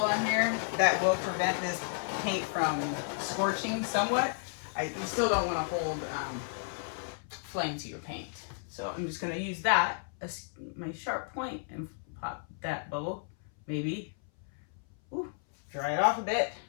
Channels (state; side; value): silent; right; 56 dB below the other